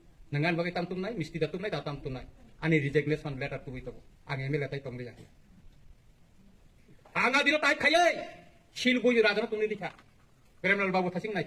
नङान बागै तामतुमनाय मिस्ति दातुमनाय दा तामतुमनाय आनि रिजेक्टनेसन लेटार तुबै दं आं एमएलए ताइ तंलै आं आंगा दिनो ताइ खायै सिलगुय राजन तुमनि दिखा प्रेमलाल बाबु थासिं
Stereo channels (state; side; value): identical; both; correlation 1.00